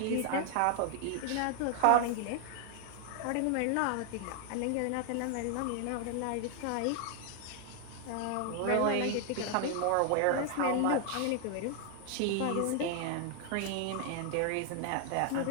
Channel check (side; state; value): both; different; correlation 0.00